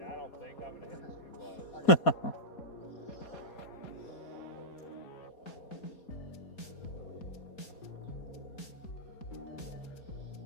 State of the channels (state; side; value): late; right; 4.2 ms